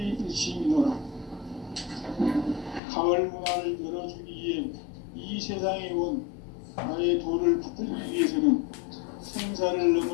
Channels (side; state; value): right; drops out; at 2.8 s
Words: 가을 문화를 열어주기 위해 이 세상에 온 나의 도를 받들기 위해서는 생사를